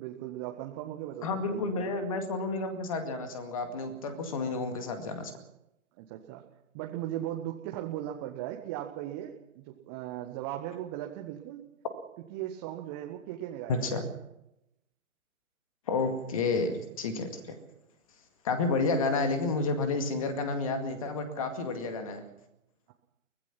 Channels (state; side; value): normal; both; correlation -0.04